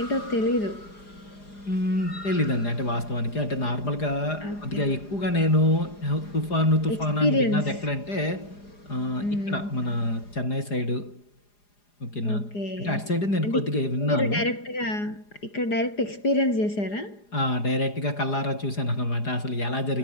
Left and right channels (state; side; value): late; right; 4.9 ms